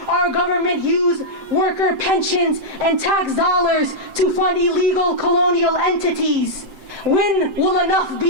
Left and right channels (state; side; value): late; left; 7.7 ms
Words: our government use worker pensions and tax dollars to fund illegal colonial entities. When will enough